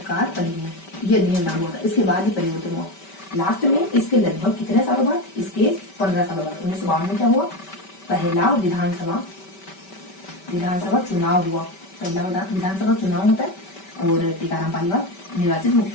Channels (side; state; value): right; late; 5.2 ms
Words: अधिनियम, ये अधिनियम लागू हुआ था। इसके बाद ही परिवर्तन हुआ लास्ट में, इसके लगभग कितने सालों बाद? इसके 15 सालों बाद 1952 में क्या हुआ? पहला विधानसभा चुनाव हुआ, पहला विधानसभा चुनाव होता है और टीकाराम पालीवाल निर्वाचित